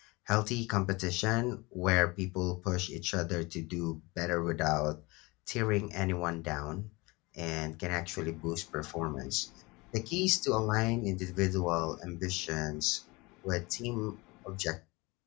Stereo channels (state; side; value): quieter; right; 24.3 dB